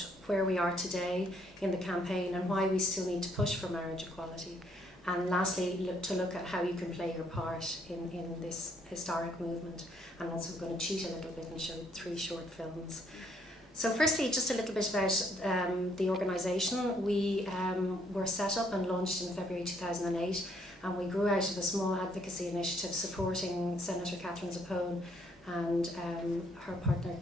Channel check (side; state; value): both; normal; correlation 0.69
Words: where we are today in the campaign and why we still need to push for marriage equality. And lastly, look at how you can play your part in this historic movement. And also I'm going to cheat a little bit and show 3 short films. So firstly, just a little bit about the organisation. We were set up and launched in February 2008, and we grew out of a small advocacy initiative supporting Senator Catherine Zappone and her partner,